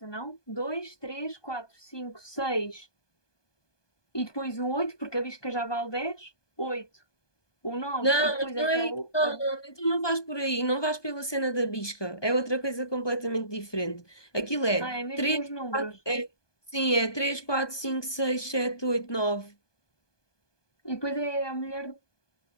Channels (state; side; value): late; right; 1.2 ms